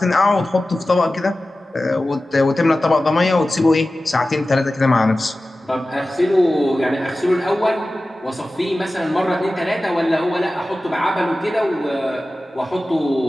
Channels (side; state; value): both; normal; correlation 0.95